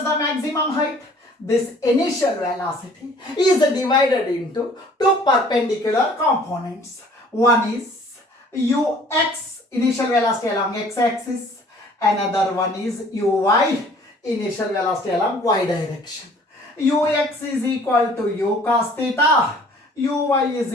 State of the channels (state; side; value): normal; both; correlation 0.54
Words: the maximum height. This initial velocity is divided into two perpendicular components. One is ux, initial velocity along x-axis. Another one is uy, initial velocity along y direction. Ux is equal to u cos theta. Uy